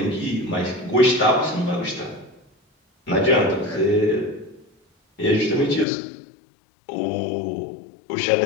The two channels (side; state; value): right; drops out; at 5.9 s